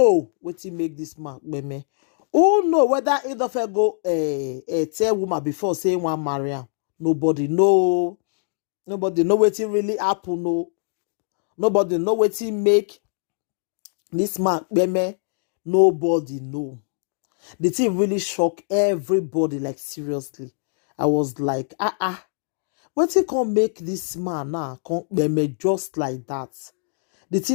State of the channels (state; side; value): silent; right; digital silence